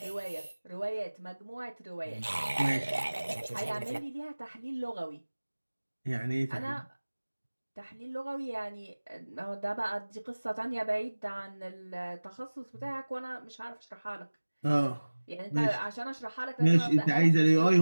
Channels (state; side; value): inverted; both; correlation -1.00